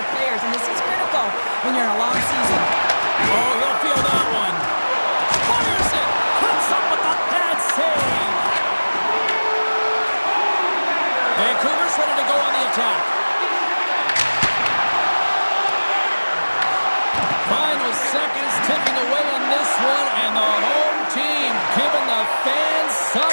players, and this is critical when you're in a long season. Oh, you'll feel that one. Fires it. Comes up with a bad save. Vancouver's ready to go on the attack. Final seconds ticking away on this one, and the home team giving the fans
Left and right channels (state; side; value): inverted; both; correlation -1.00